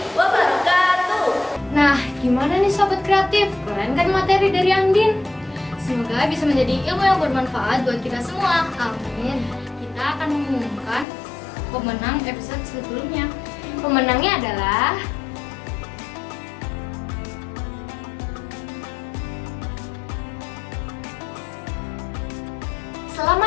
wabarakatuh. Nah, gimana nih sobat kreatif? Keren kan materi dari Andin? Semoga bisa menjadi ilmu yang bermanfaat buat kita semua. Amin. Kita akan mengumumkan pemenang episode sebelumnya. Pemenangnya adalah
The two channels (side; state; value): right; drops out; at 11.1 s